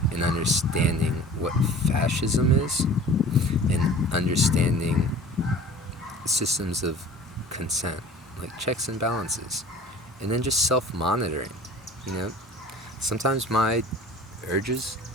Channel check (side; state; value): both; normal; correlation 0.43